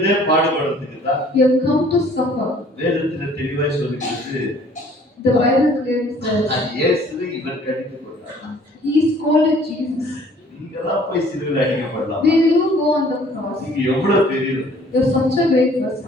பாடுபடுறதுக்கு தான் He have come to suffer. வேதத்துல தெளிவாய் சொல்லிருக்கு. The Bible clearly says அது இயேசுவை இவர் கடிந்து கொண்டார். he scolded Jesus. நீங்கதான் போய் சிலுவையில அடிக்கப்படலாம். Will you go on the cross? நீங்க எவ்வளவு பெரியவர். You're such a great person.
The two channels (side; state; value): both; normal; correlation 0.55